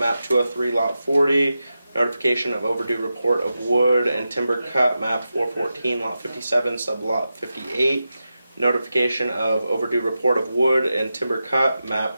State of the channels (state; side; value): inverted; both; correlation -0.91